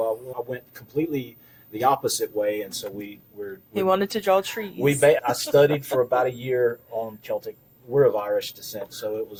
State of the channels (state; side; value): identical; both; correlation 1.00